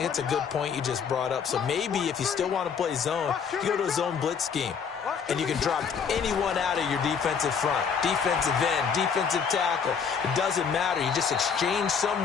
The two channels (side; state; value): right; quieter; 6.5 dB